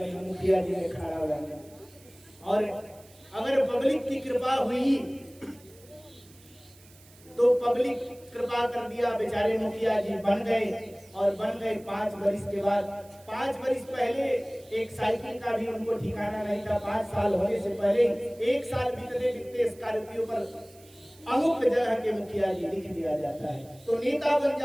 हम मुखिया जी में खड़ा हो जाएंगे। और अगर पब्लिक की कृपा हुई तो पब्लिक कृपा कर दिया, बेचारे मुखिया जी बन गए। और बन गए 5 वर्ष के बाद। 5 वर्ष पहले एक साइकिल का भी उनको ठिकाना नहीं था। 5 साल होने से पहले 1 साल बीतते बीतते स्कॉर्पियो पर अमुक जगह के मुखिया जी लिख दिया जाता है। तो नेता बन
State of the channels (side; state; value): right; noise; hiss, 25 dB below the sound